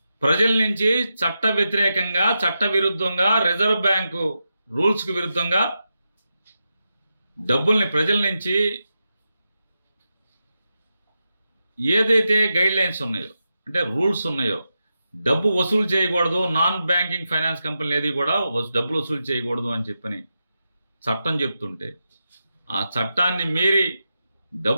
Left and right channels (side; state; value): both; inverted; correlation -0.89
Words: ప్రజల నుంచి చట్ట వ్యతిరేకంగా, చట్ట విరుద్ధంగా, రిజర్వ్ బ్యాంకు రూల్స్కి విరుద్ధంగా డబ్బుల్ని ప్రజల నుంచి ఏదైతే గైడ్ లైన్స్ ఉన్నాయో, అంటే రూల్స్ ఉన్నాయో, డబ్బు వసూలు చేయకూడదు, నాన్ బ్యాంకింగ్ ఫైనాన్స్ కంపెనీలు ఏది కూడా డబ్బులు వసూలు చేయకూడదు అని చెప్పని చట్టం చెప్తుంటే, ఆ చట్టాన్ని మీరి